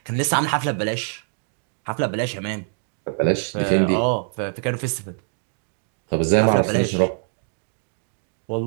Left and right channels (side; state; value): left; silent; digital silence